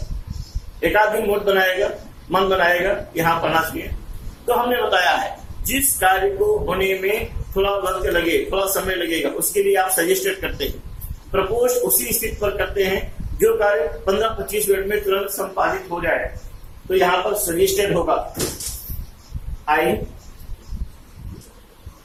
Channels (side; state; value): both; identical; correlation 1.00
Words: एक आध दिन मूड बनाएगा, मन बनाएगा यहाँ पढ़ना चाहिए। तो हमने बताया है जिस कार्य को होने में थोड़ा वक्त लगे, थोड़ा समय लगेगा, उसके लिए आप सजेस्टेड करते हैं। प्रपोज उसी स्थिति पर करते हैं जो कार्य 15-25 मिनट में तुरंत संपादित हो जाए। तो यहाँ पर सजेस्टेड होगा I